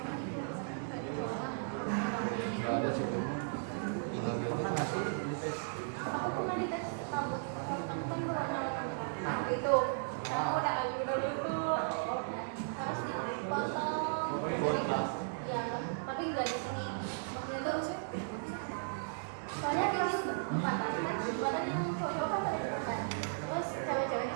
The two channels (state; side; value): silent; left; digital silence